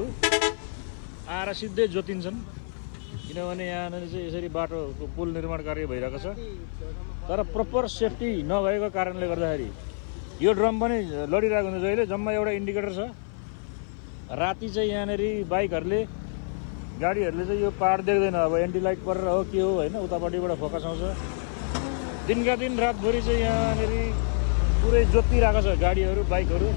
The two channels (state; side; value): silent; right; 56 dB below the other